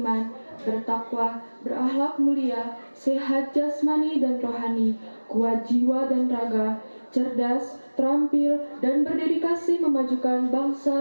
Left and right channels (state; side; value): inverted; both; correlation -1.00